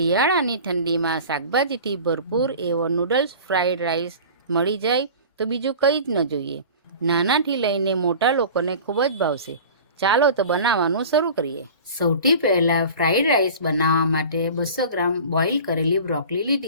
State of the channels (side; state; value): both; inverted; correlation -0.39